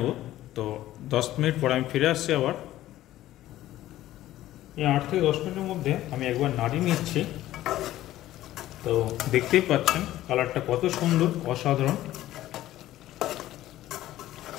তো 10 মিনিট পরে আমি ফিরে আসছি আবার। এই 8 থেকে 10 মিনিটের মধ্যে আমি একবার নাড়িয়ে নিচ্ছি। তো দেখতেই পাচ্ছেন কালারটা কত সুন্দর, অসাধারণ।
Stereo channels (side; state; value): right; quieter; 14.4 dB